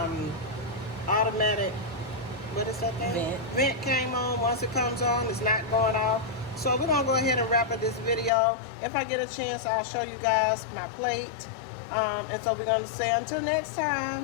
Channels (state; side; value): drops out; right; at 8.3 s